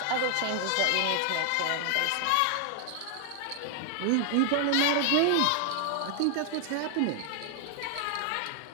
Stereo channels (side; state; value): both; different; correlation 0.00